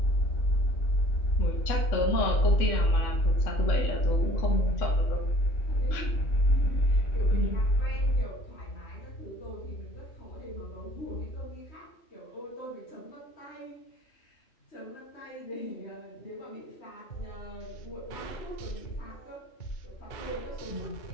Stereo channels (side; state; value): right; late; 3.6 ms